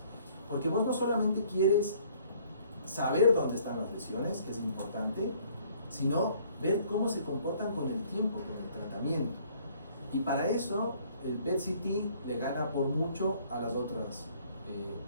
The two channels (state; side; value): inverted; both; correlation -0.60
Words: Porque vos no solamente quieres saber dónde están las lesiones, que es importante, sino ver cómo se comportan con el tiempo, con el tratamiento. Y para eso el PET-CT le gana por mucho a las otras,